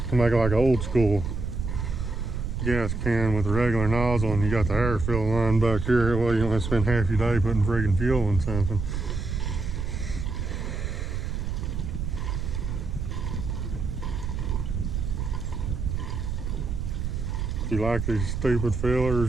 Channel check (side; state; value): right; noise; rumble, 3 dB below the sound